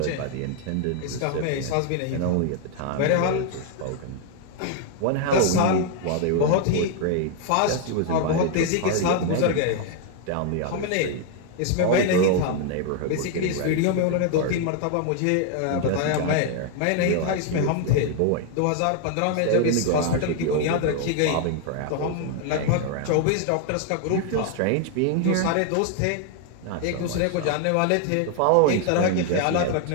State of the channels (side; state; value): both; different; correlation 0.00